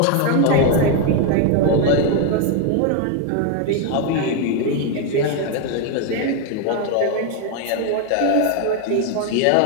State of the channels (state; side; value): different; both; correlation 0.01